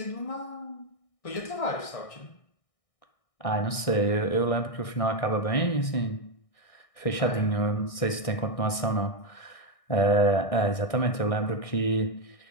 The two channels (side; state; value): right; late; 1.6 ms